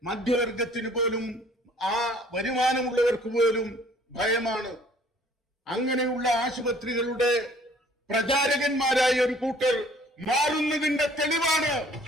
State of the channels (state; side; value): normal; both; correlation 0.56